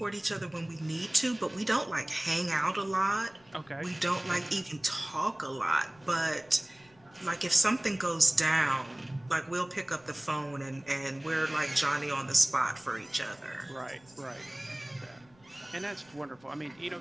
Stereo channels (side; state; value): left; noise; rumble, 30 dB below the sound